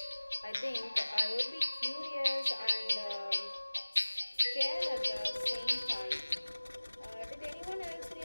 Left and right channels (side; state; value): both; inverted; correlation -1.00